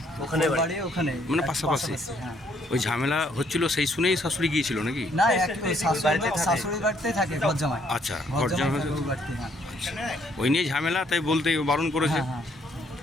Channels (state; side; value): normal; both; correlation 0.68